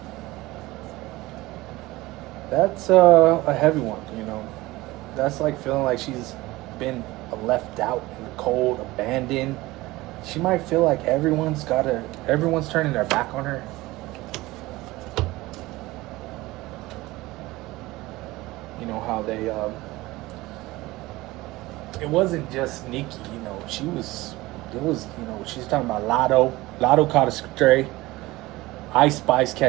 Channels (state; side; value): quieter; left; 19.5 dB